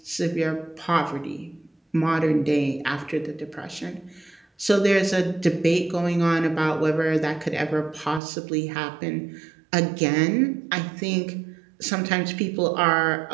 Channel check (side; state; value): left; drops out; at 8.2 s